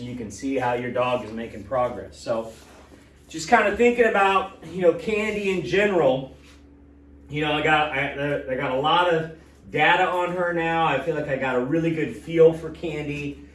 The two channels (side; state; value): both; identical; correlation 1.00